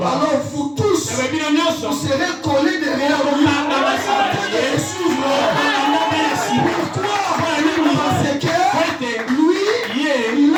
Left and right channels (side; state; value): both; identical; correlation 1.00